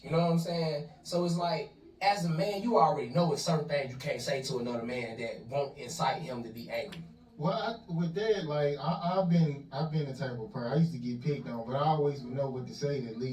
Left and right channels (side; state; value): both; identical; correlation 1.00